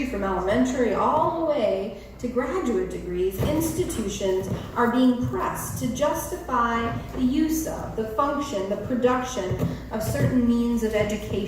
from elementary all the way to graduate degrees, institutions are being pressed to justify the use of, the function, the production of certain means of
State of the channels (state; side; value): identical; both; correlation 1.00